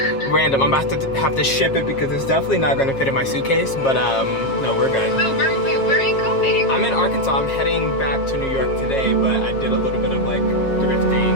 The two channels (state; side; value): late; right; 7.4 ms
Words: Random. I'm about to have to ship it because it's definitely not going to fit in my suitcase, but no, we're good. Oh, where are you going? I'm in Arkansas. I'm heading back to New York today, but I did a little bit of like thrifting